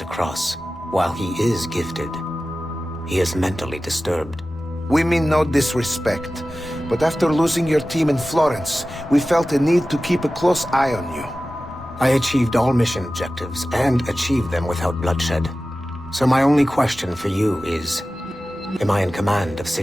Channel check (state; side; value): normal; both; correlation 0.95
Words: Cross, while he is gifted, he is mentally disturbed. We mean no disrespect, but after losing your team in Florence, we felt a need to keep a close eye on you. I achieved all mission objectives, and achieved them without bloodshed. So my only question for you is, am I in command of